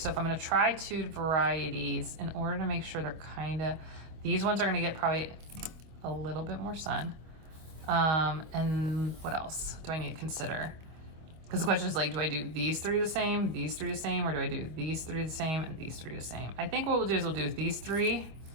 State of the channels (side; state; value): left; late; 25 ms